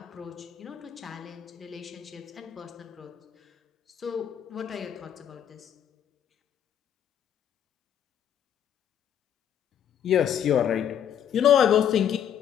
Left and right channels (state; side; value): quieter; right; 9.3 dB